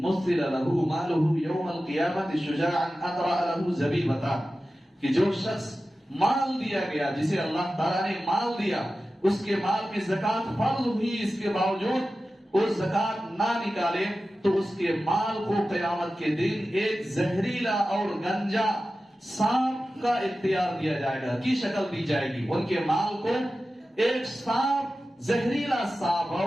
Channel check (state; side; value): normal; both; correlation 0.94